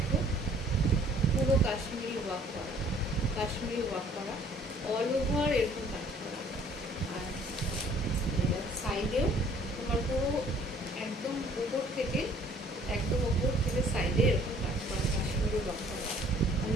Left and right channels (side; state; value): both; normal; correlation 0.57